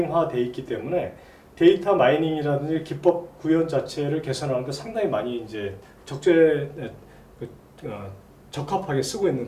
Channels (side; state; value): both; identical; correlation 1.00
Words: 되어 있기 때문에 데이터 마이닝이라든지 기법 구현 자체를 개선하는데 상당히 많이 이제 적합하게 쓰고